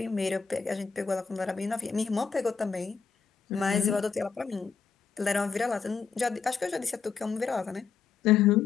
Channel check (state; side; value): quieter; right; 5.8 dB